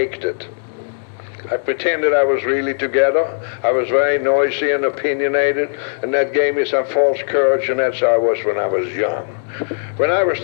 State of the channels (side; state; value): right; silent; digital silence